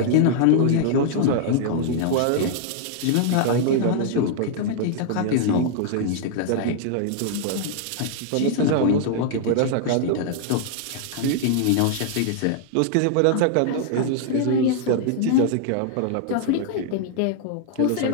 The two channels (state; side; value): different; both; correlation -0.01